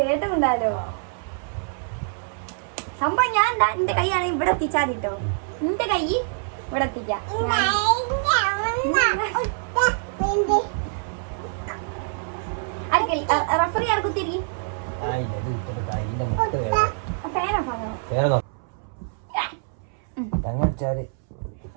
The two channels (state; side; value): silent; left; 62 dB below the other